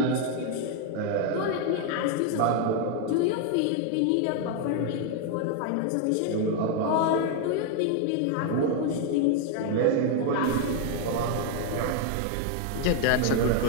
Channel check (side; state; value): both; different; correlation 0.01